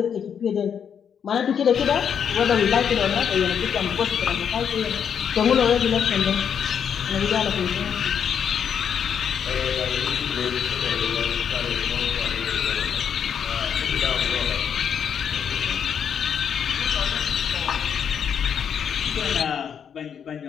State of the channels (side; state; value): right; quieter; 7.8 dB